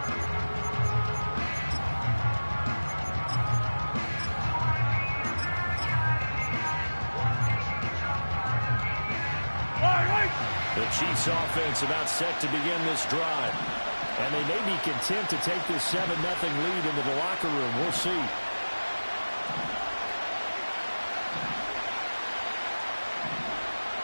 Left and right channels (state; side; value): inverted; both; correlation -1.00